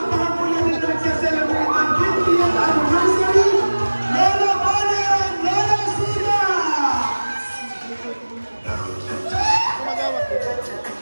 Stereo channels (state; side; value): inverted; both; correlation -1.00